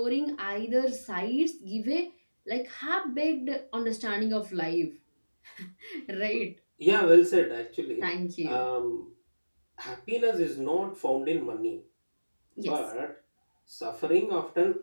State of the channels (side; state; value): both; inverted; correlation -1.00